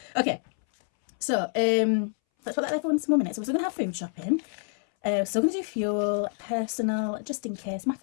Okay, so let's put that there for 1 more minute. So we're still gonna have food shopping. We're still gonna do fuel, personal, just in case, my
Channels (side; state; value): right; silent; 60 dB below the other